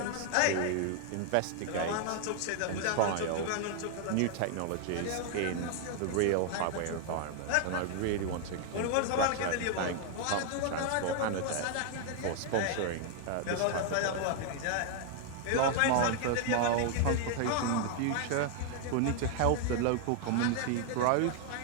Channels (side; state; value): both; different; correlation 0.00